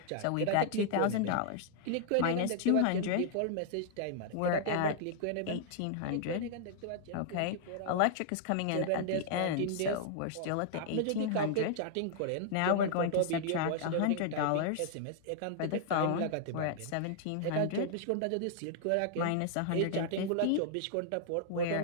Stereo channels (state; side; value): different; both; correlation -0.01